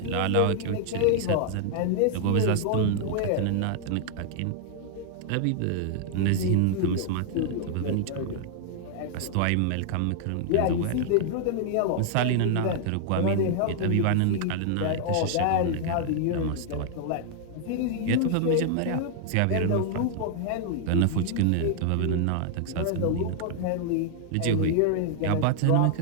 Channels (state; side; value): different; both; correlation 0.00